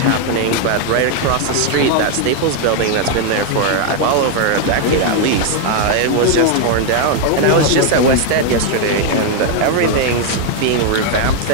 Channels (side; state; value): both; different; correlation 0.00